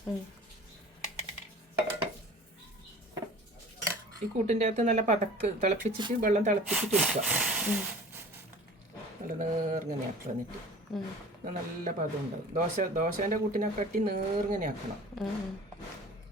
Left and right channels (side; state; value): both; normal; correlation 0.43